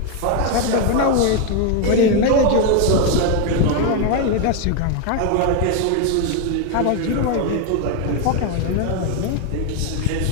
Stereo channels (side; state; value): both; different; correlation 0.01